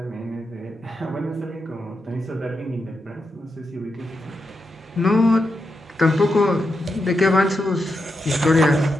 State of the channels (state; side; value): normal; both; correlation 0.86